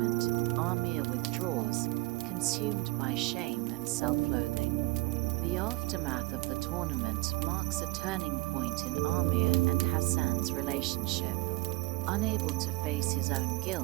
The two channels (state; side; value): quieter; left; 21.6 dB